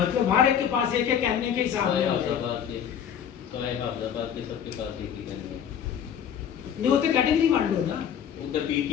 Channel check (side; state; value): right; quieter; 8.7 dB